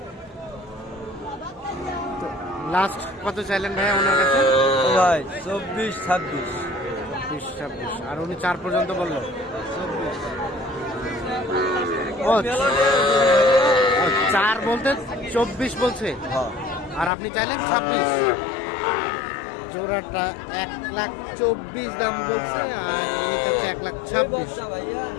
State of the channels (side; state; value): right; drops out; at 17.1 s